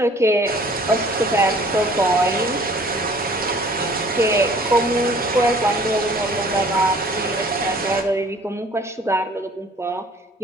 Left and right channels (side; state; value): both; normal; correlation 0.53